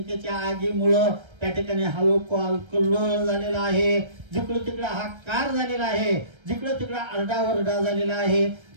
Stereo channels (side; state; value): left; late; 1.3 ms